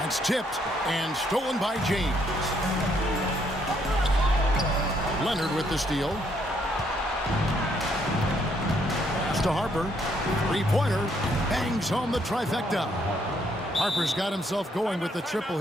It's tipped and stolen by James. Leonard with the steal. Pass to Harper. 3-pointer. Bangs home the trifecta. Harper's got himself going with the triple,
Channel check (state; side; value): normal; both; correlation 0.71